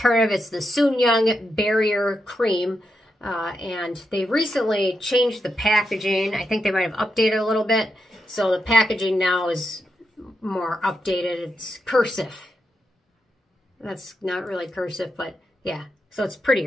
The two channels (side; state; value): both; normal; correlation 0.85